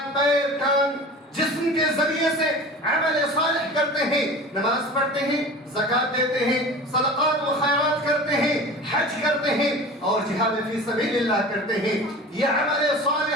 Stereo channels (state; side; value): normal; both; correlation 0.37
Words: پیر، کان، جسم کے ذریعے سے عمل صالح کرتے ہیں، نماز پڑھتے ہیں، زکوٰۃ دیتے ہیں، صدقات و خیرات کرتے ہیں، حج کرتے ہیں اور جہاد فی سبیل اللہ کرتے ہیں، یہ عمل